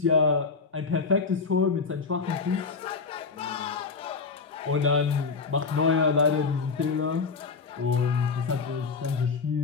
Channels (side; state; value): right; quieter; 4.7 dB